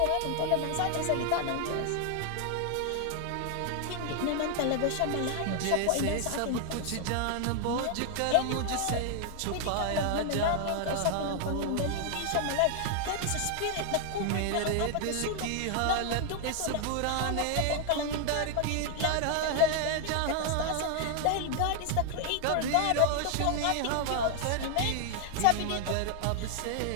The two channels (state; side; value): different; both; correlation 0.00